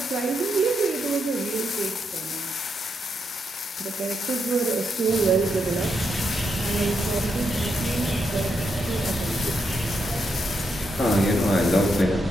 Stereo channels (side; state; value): both; normal; correlation 0.81